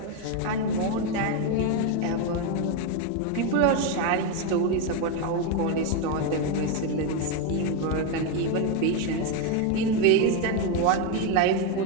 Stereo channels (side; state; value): both; different; correlation 0.02